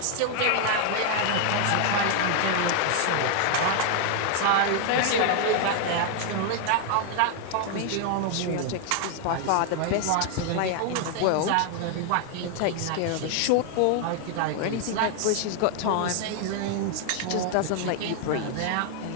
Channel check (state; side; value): different; both; correlation 0.00